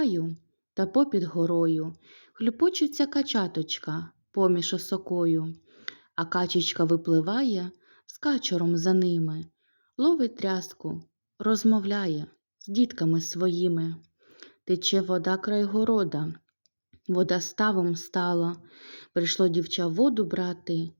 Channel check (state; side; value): inverted; both; correlation -1.00